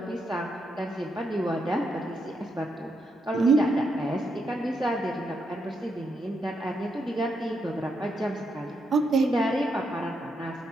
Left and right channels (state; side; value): normal; both; correlation 0.80